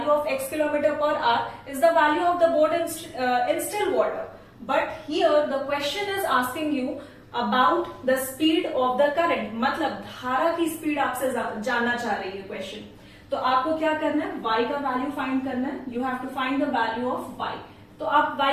of x kilometre per hour is the value of the boat in still water. But here the question is asking you about the speed of the current, मतलब धारा की स्पीड आपसे जानना चाह रही है क्वेश्चन। तो आपको क्या करना है, y का वैल्यू फाइंड करना है, you have to find the value of y। तो आप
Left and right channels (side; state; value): both; identical; correlation 1.00